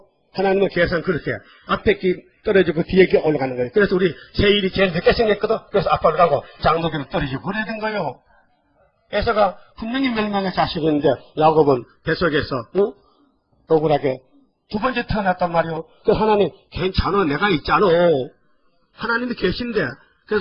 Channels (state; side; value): identical; both; correlation 1.00